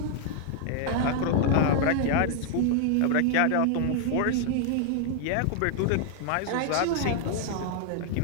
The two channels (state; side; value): different; both; correlation 0.00